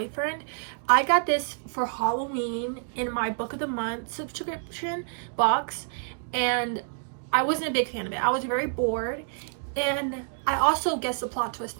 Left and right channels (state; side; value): silent; left; digital silence